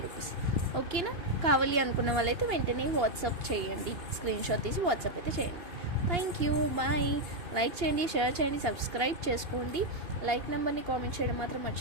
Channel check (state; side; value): late; left; 2.8 ms